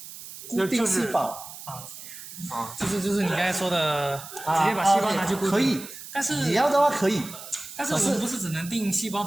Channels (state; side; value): noise; right; hiss, 13 dB below the sound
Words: 固定细胞就是你刚才说的，直接把细胞拿去固定。可以，但是你要的话可以，但是我们不是只能定细胞